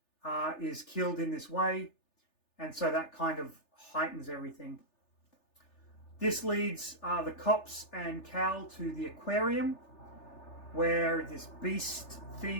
is killed in this way, and so that kind of heightens everything. This leads the cops and Cal to the aquarium, where this beast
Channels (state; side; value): late; right; 3.4 ms